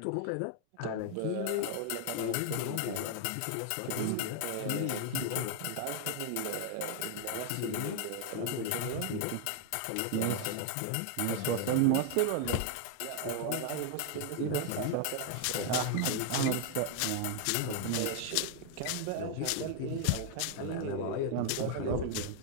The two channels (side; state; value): both; different; correlation 0.00